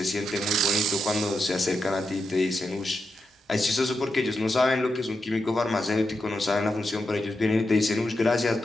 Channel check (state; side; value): normal; both; correlation 0.86